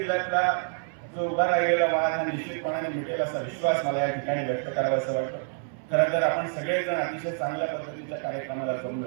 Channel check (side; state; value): left; silent; 60 dB below the other